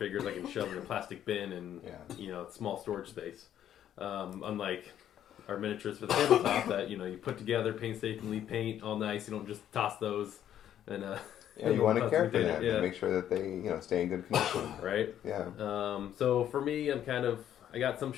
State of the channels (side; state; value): right; quieter; 10.7 dB